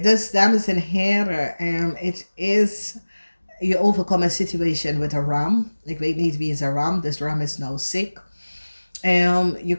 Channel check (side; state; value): both; inverted; correlation -1.00